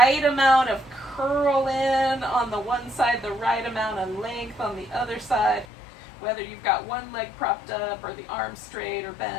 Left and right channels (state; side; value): drops out; right; at 5.7 s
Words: amount of curl in on the one side, the right amount of length on the other side, whether you've got one leg propped up or the arm straight or